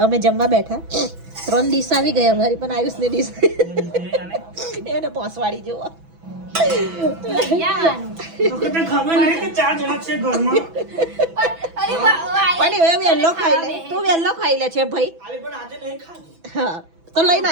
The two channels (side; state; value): left; late; 6.0 ms